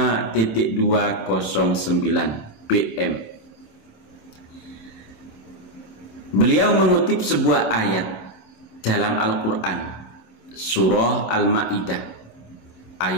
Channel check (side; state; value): right; late; 26 ms